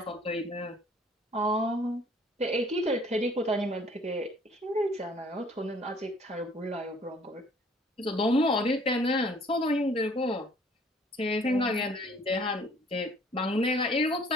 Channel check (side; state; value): both; normal; correlation 0.57